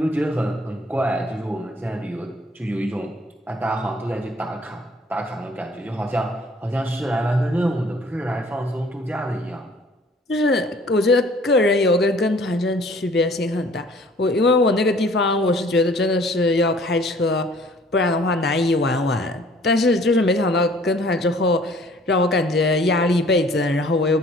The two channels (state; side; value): normal; both; correlation 0.55